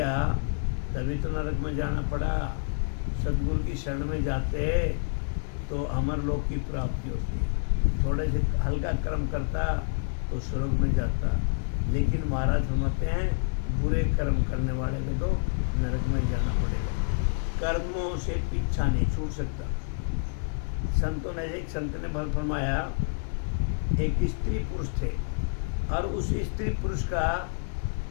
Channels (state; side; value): silent; right; digital silence